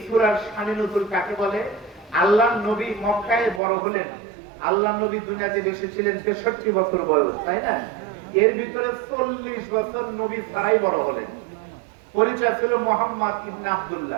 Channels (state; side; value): drops out; left; at 3.6 s